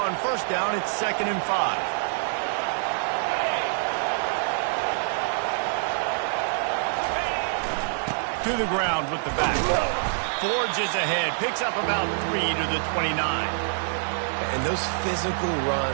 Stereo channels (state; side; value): silent; left; digital silence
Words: first down, it's 2nd and 5. To the ground with the back. Forges ahead, picks up about 3 to the 29. And those physical